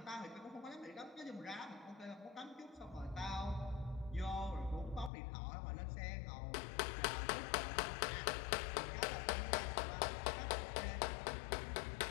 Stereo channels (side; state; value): right; drops out; at 5.1 s